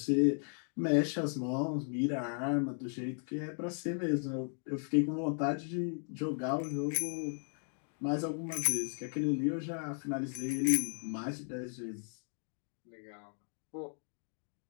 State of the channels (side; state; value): right; silent; 54 dB below the other